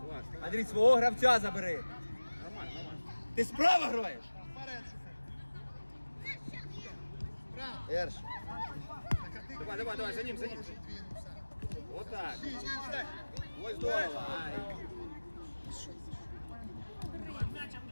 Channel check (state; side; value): inverted; both; correlation -1.00